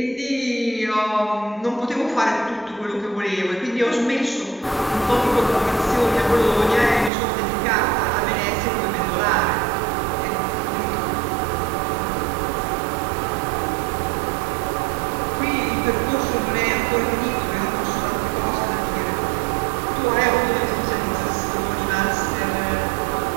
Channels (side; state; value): left; drops out; at 7.1 s